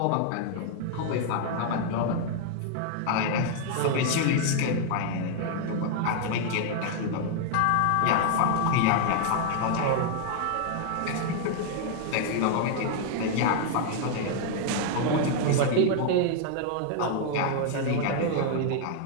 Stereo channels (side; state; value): both; different; correlation -0.01